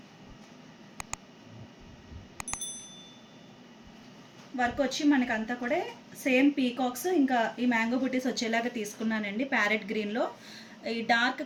వర్క్ వచ్చి మనకంతా కూడా సేమ్ పీకాక్స్ ఇంకా ఈ మ్యాంగో బుటీస్ వచ్చేలాగా తీసుకున్నానండి. ప్యారెట్ గ్రీన్లో ఈ డార్క్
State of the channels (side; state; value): both; identical; correlation 1.00